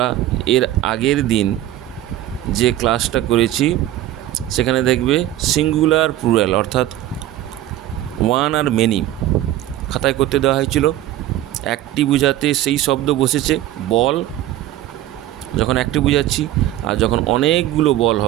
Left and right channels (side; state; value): left; quieter; 13.8 dB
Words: এর আগের দিন যে ক্লাসটা করেছি সেখানে দেখবে সিঙ্গুলার প্লুরাল অর্থাৎ ওয়ান আর মেনি খাতায় করতে দেওয়া হয়েছিল। একটি বোঝাতে সেই শব্দ বসেছে বল, যখন একটি বোঝাচ্ছি। আর যখন অনেকগুলো বল